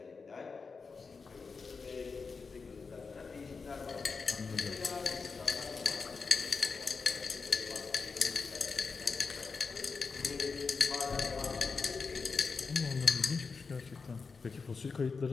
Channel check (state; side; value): quieter; right; 4.8 dB